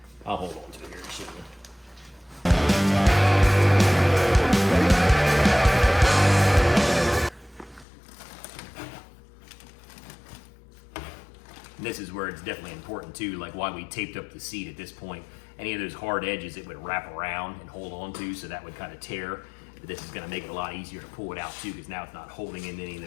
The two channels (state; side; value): drops out; right; at 7.9 s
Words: I'll hold on to it here and show you. This is where it's definitely important too, like why we taped up the seat at this point. Any of those hard edges it would wrap around and hold on to, so that would kind of tear. But this is going to make it a lot easier to pull it out too, because now it's not holding in any of